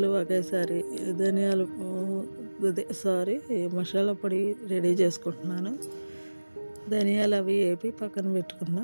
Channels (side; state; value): both; inverted; correlation -1.00